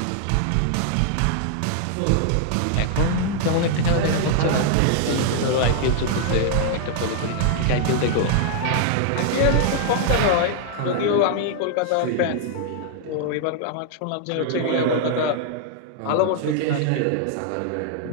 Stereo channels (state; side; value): different; both; correlation 0.00